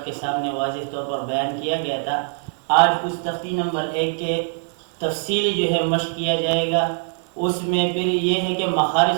کے سامنے واضح طور پر بیان کیا گیا تھا. آج اس تختی نمبر 1 کے تفصیلی جو ہے مشق کیا جائے گا. اس میں پھر یہ ہے کہ مخارج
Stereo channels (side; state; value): left; silent; 64 dB below the other